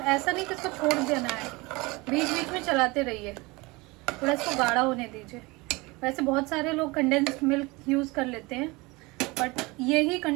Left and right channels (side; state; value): left; quieter; 24.1 dB